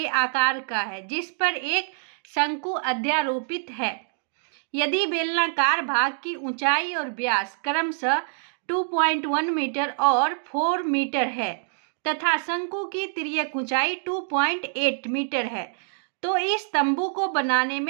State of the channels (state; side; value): silent; left; digital silence